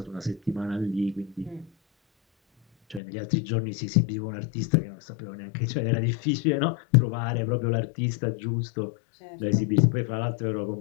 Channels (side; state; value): right; drops out; at 3.0 s